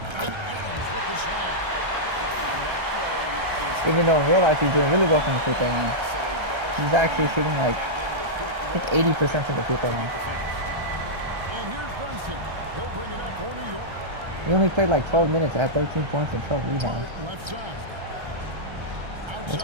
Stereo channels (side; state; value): left; late; 1.3 ms